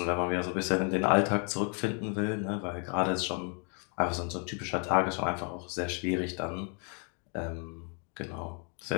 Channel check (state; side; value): quieter; right; 38.2 dB